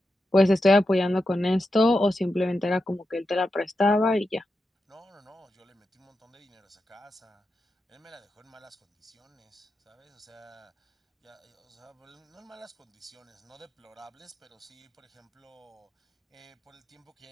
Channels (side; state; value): both; normal; correlation 0.88